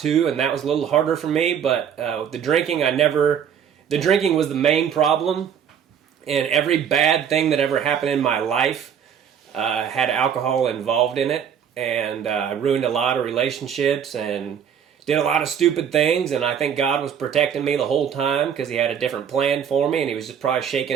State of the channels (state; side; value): quieter; left; 8.2 dB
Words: and that was a little harder for me. But the drinking, the drinking was the main problem, and every bad thing that ever happened in my life had alcohol involved in it, and I ruined a lot of relationships and did a lot of stupid things, and I think God was protecting me the whole time because he had a different plan for me, and he was just probably